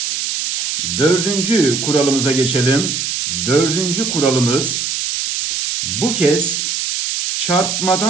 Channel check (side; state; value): right; noise; hiss, 2 dB below the sound